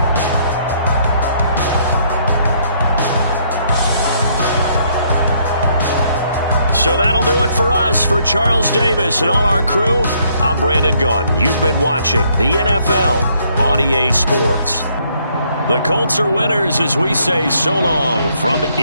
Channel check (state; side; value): inverted; both; correlation -0.68